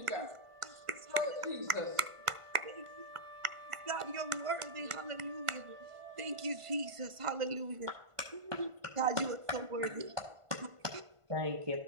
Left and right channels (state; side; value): late; left; 1.5 ms